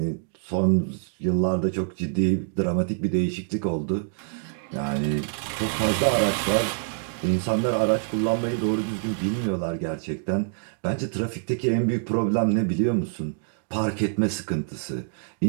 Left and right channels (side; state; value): left; silent; digital silence